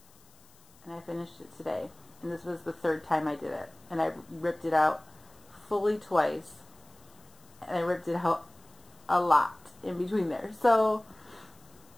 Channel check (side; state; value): left; noise; hiss, 28 dB below the sound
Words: and I finished it today. And this was the 3rd time I did it, and I ripped it out fully twice, and I ripped it out a lot in between there. So